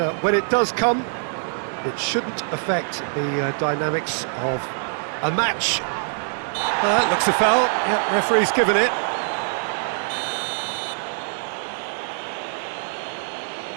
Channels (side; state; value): left; silent; digital silence